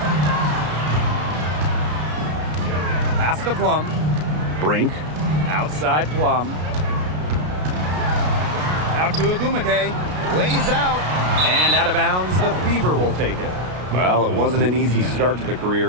Pass to Plum. Brink, outside Plum. Out to Agumake. Lays out. And out of bounds, the Fever will take it. Well, it wasn't an easy start to the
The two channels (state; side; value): late; left; 33 ms